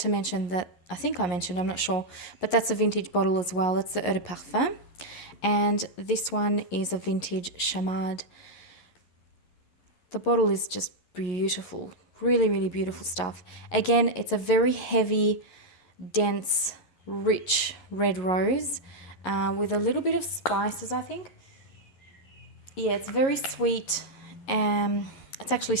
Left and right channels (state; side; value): late; right; 11 ms